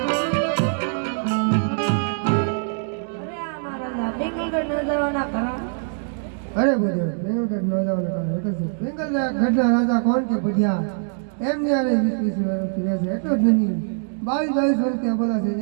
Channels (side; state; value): left; silent; digital silence